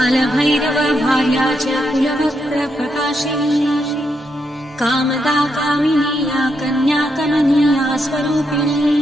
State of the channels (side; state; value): both; normal; correlation 0.81